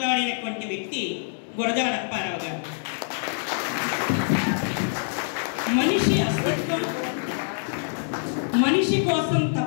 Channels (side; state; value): right; silent; digital silence